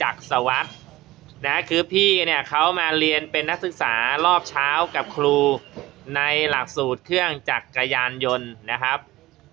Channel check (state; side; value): quieter; left; 17.7 dB